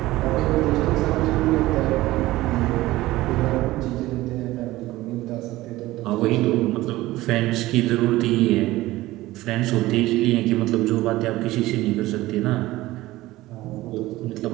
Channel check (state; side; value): quieter; left; 17.5 dB